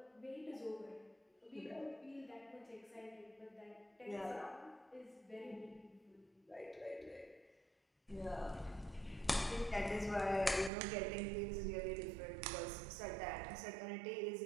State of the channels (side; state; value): left; drops out; at 10.7 s